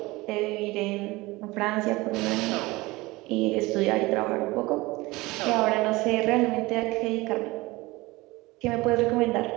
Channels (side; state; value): left; quieter; 21.3 dB